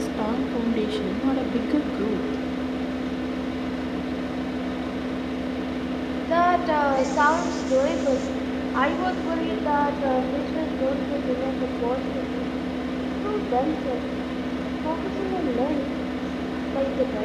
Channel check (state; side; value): identical; both; correlation 1.00